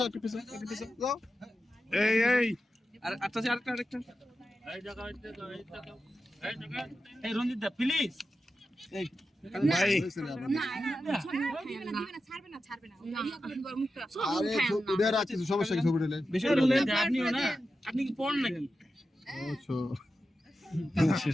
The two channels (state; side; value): normal; both; correlation 0.91